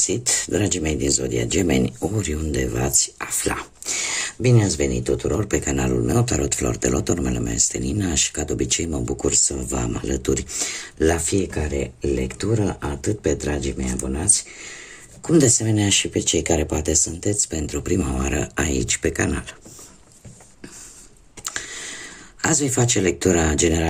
dragii mei din Zodia Gemeni, oriunde v-ați afla. Bine ați venit tuturor pe canalul meu, Tarot Flor de Loto, numele meu este Nina și ca de obicei mă bucur să vă am alături la fiecare lectură, atât pe dragii mei abonați, cum de asemenea și pe cei care poate sunteți pentru prima oară aici pe canal. Azi voi face lectura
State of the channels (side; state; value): both; identical; correlation 1.00